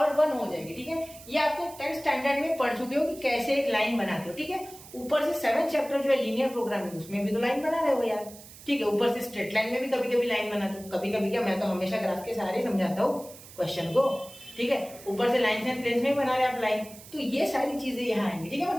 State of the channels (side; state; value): right; noise; hiss, 18 dB below the sound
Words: 1 हो जाएगी, ठीक है, ये आपको 10th स्टैंडर्ड में पढ़ चुके हो कि कैसे एक लाइन बनाते हो, ठीक है, ऊपर से 7th चैप्टर जो है लीनियर प्रोग्रामिंग, उसमें भी तो लाइन बना रहे हो यार, ठीक है, ऊपर से स्ट्रेट लाइन में भी कभी कभी लाइन बनाते हो, कभी कभी क्या, मैं तो हमेशा ग्राफ के सहारे समझाता हूँ क्वेश्चन को, ठीक है, ऊपर से लाइन एंड प्लेस में बना रहे आप लाइन, तो ये सारी चीजें यहाँ आएंगी, ठीक है,